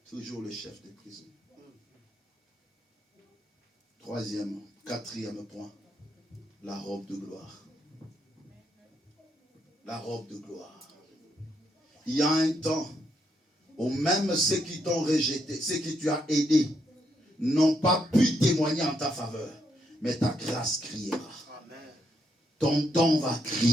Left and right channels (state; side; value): normal; both; correlation 0.77